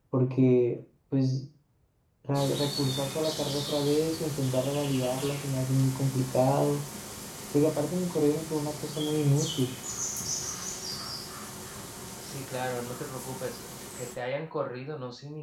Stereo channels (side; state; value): both; identical; correlation 1.00